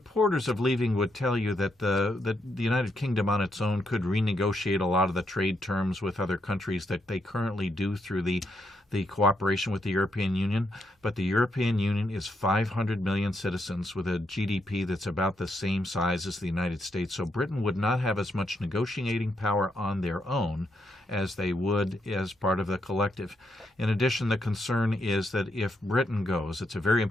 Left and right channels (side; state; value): both; normal; correlation 0.79